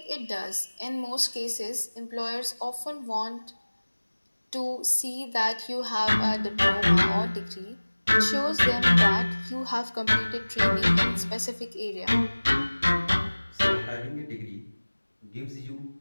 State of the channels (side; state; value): both; inverted; correlation -1.00